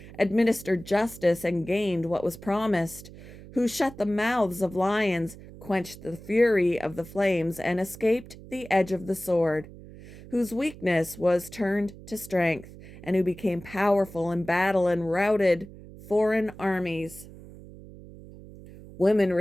administered justice, and gained what was promised, who shut the mouths of lions, quenched the fury of the flames, and escaped the edge of the sword, whose weakness was turned to strength, and who became powerful in battle and routed foreign armies. Women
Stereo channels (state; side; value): noise; right; hum, 17 dB below the sound